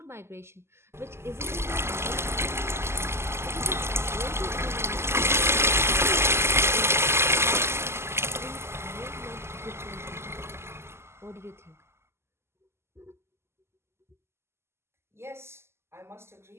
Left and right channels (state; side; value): late; left; 0.12 ms